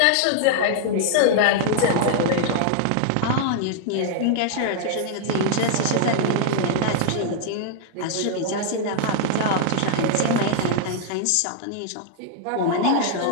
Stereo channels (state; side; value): different; both; correlation -0.01